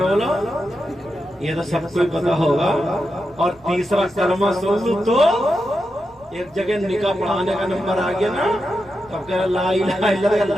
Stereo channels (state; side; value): noise; right; rumble, 28 dB below the sound